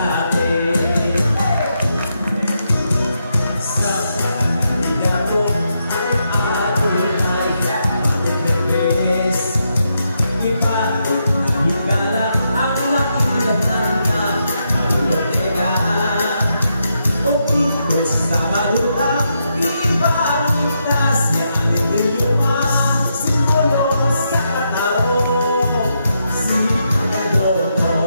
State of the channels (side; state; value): both; inverted; correlation -0.82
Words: Sa kanila mo ang Adonai matipis. Ipatid na higala ang makilahan na alulogeka. Pagkitos na marunang ibangita siya ang idioma. Simbolo sa katao, si